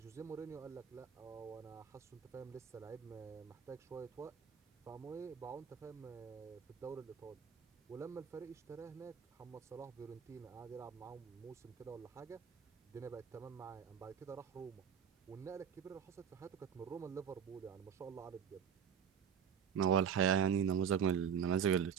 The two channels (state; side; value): quieter; left; 7.7 dB